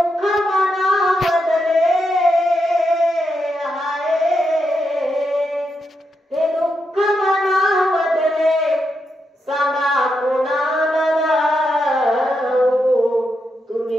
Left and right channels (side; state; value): both; normal; correlation 0.83